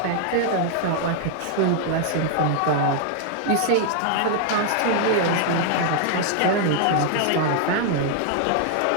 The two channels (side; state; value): both; different; correlation 0.00